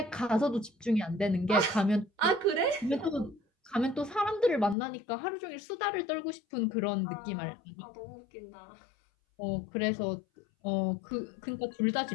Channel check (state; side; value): drops out; right; at 4.8 s